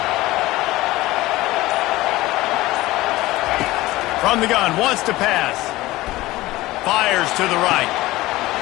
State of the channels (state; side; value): quieter; right; 18.3 dB